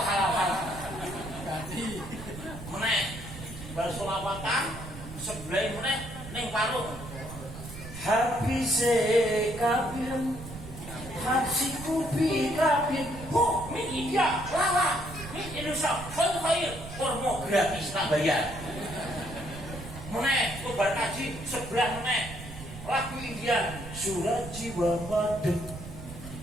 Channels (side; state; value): right; noise; rumble, 12 dB below the sound